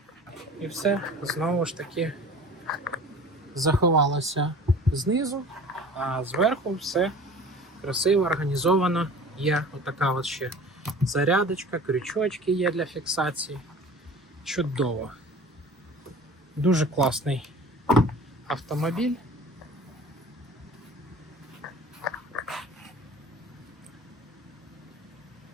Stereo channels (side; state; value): both; normal; correlation 0.42